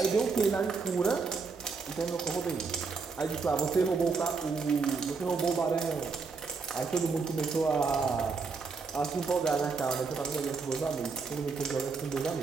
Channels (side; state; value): left; quieter; 4.8 dB